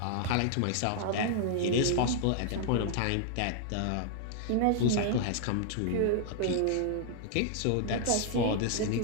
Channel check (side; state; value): both; different; correlation -0.01